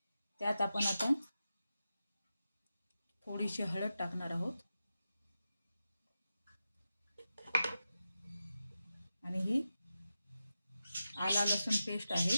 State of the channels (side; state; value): both; inverted; correlation -0.91